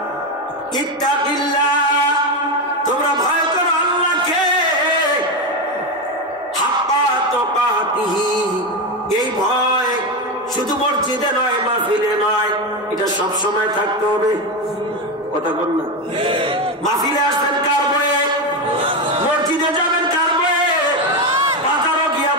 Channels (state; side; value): normal; both; correlation 0.13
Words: ইত্তাকিল্লাহ, তোমরা ভয় করো আল্লাহকে, হাক্কা তুকাতিহি। এই ভয় শুধু মসজিদে নয়, মাহফিলে নয়, এটা সব সময় থাকতে হবে। কথা বল না? মাহফিলে আসবেন কার ভয়ে? মসজিদে যাবেন কার ভয়ে? বাজারও গিয়া